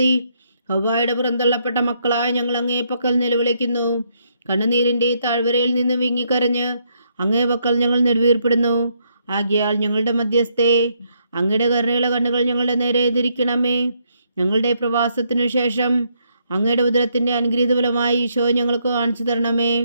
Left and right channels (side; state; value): both; inverted; correlation -0.75